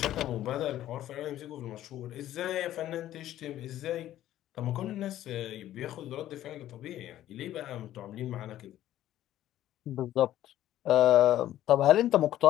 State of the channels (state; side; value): quieter; right; 13.1 dB